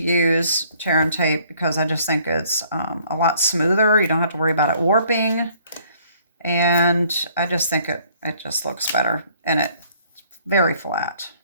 tear and tape because I just think it's a lot smoother. You don't have to worry about it warping. And I just think it just looks better, and it's very flat.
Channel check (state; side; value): inverted; both; correlation -0.61